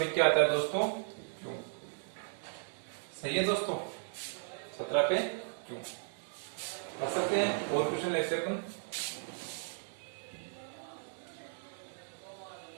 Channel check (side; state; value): left; silent; digital silence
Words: क्या आता है दोस्तों? क्यों, सही है दोस्तों, 17 पे क्यों कर सकते हैं। और क्वेश्चन लेते अपन।